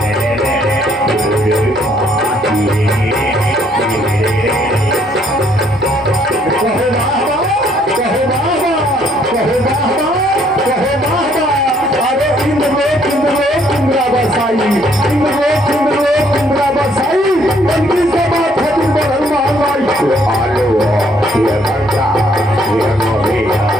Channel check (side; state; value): both; normal; correlation 0.66